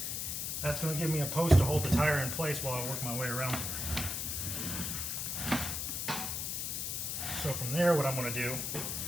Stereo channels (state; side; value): noise; left; hiss, 2 dB below the sound